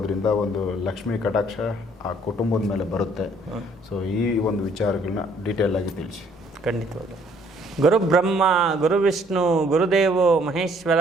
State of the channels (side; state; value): left; noise; rumble, 29 dB below the sound